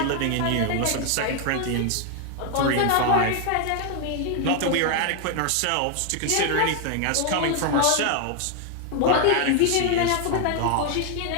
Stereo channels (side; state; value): both; different; correlation 0.00